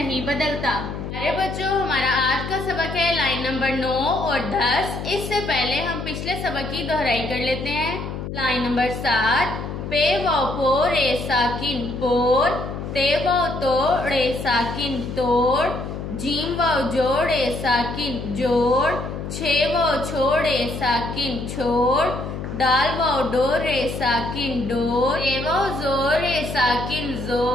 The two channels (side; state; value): left; noise; hum, 7 dB below the sound